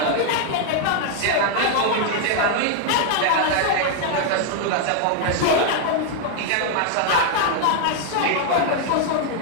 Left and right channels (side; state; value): both; different; correlation 0.00